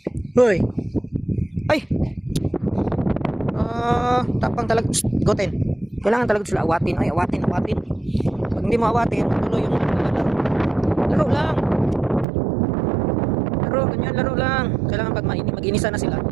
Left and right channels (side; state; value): left; drops out; at 12.2 s